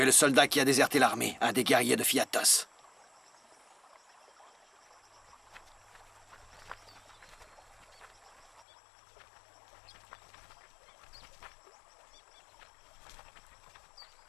es le soldat qui a déserté l'armée, un des guerriers de Fiatos.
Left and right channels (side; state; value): right; drops out; at 8.7 s